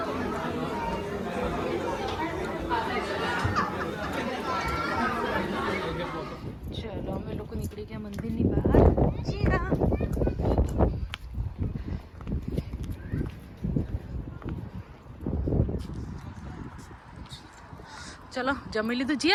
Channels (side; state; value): both; identical; correlation 1.00